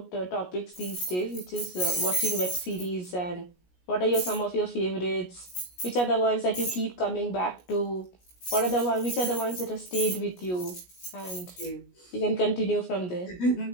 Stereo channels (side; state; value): right; late; 17 ms